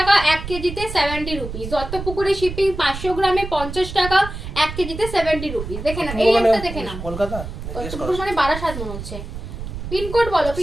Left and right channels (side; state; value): right; noise; rumble, 8 dB below the sound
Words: 1 কেজিতে 70 রুপিস। দত্তপুকুরে শিপিং 500 গ্রামে 50 টাকা, 1 কেজিতে 70 রুপিস। দেখে না, এই একটা দেখে না, কলকাতা দত্তপুকুর মানে বারাসাত মনে হচ্ছে। পিনকোড বলো,